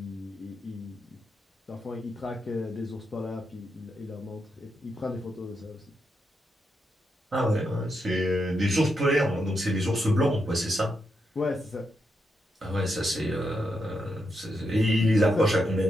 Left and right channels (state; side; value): normal; both; correlation 0.83